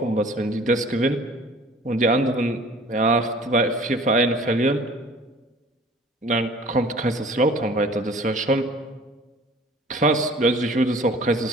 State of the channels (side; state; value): both; normal; correlation 0.48